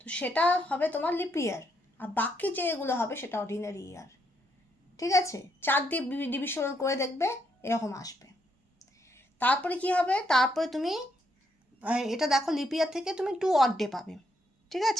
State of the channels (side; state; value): both; normal; correlation 0.76